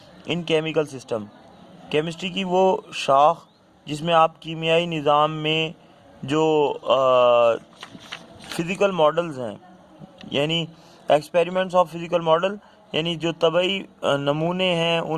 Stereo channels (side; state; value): both; identical; correlation 1.00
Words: in chemical system. Chemistry की वो शाख जिसमें आप कीमियाई निज़ाम में जो फ़िज़िकल मॉडल्स हैं, यानी एक्सपेरिमेंट्स ऑफ फिज़िकल मॉडल, यानी जो तबई नमूने हैं